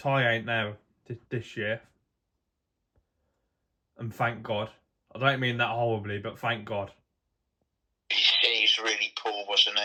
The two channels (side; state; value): both; identical; correlation 1.00